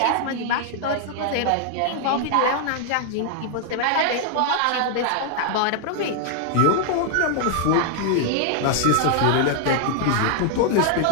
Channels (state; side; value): different; both; correlation 0.00